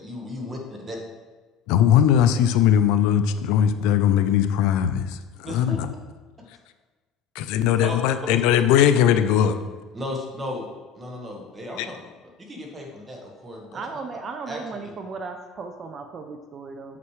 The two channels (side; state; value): right; quieter; 8.6 dB